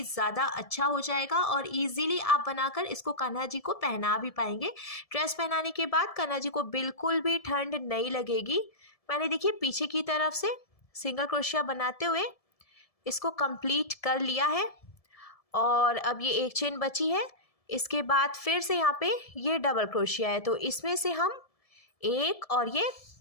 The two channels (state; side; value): late; right; 1.7 ms